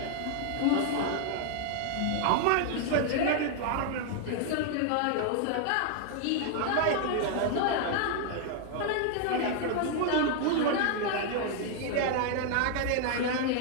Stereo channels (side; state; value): both; different; correlation 0.00